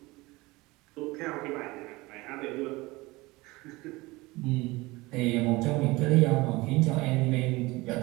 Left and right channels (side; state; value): left; quieter; 21.8 dB